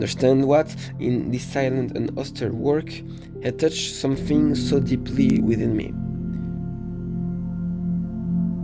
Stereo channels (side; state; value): both; identical; correlation 1.00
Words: what, in this silent and austere work, had touched something so deeply within me.